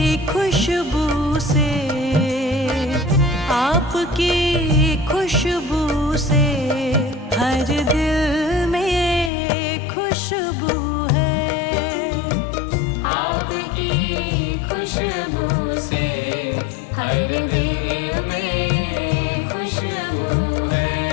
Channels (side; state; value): right; drops out; at 9.3 s